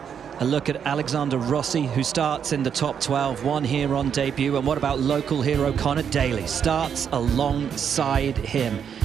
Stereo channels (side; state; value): left; quieter; 7.8 dB